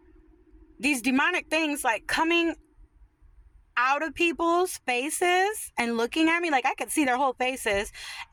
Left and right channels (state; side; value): identical; both; correlation 1.00